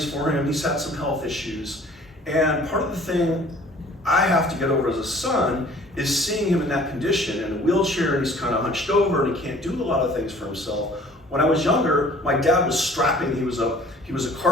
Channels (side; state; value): both; normal; correlation 0.51